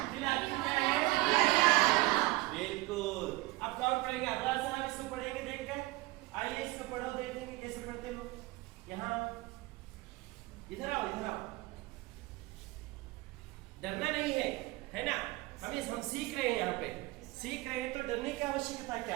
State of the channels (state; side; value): quieter; left; 20.6 dB